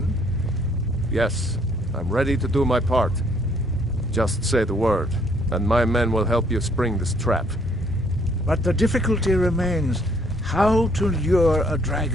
Yes, I'm ready to do my part. Just say the word, and my men will help you spring this trap. But the difficulty remains how to lure a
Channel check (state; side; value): normal; both; correlation 0.64